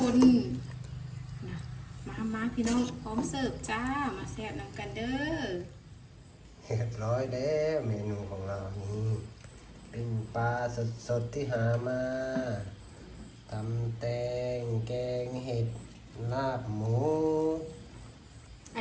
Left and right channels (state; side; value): identical; both; correlation 1.00